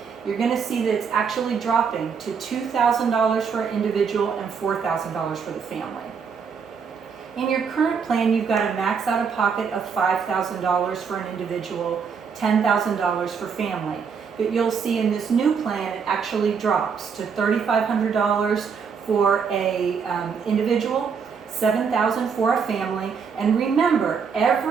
You're going to see that it's actually dropping to $2,000 for an individual and $4,000 for the family. In your current plan, you've got a max out of pocket of $5,000 for an individual, $10,000 for family. But you'll see in this new plan, it actually drops to $3,500 for a individual, $7,000 for a family. And remember,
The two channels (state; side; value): quieter; left; 6.2 dB